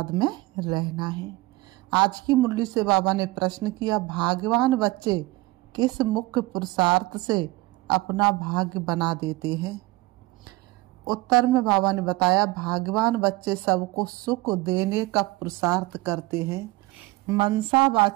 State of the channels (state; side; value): quieter; left; 20.8 dB